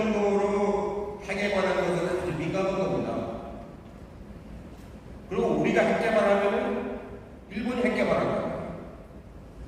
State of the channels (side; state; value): both; identical; correlation 1.00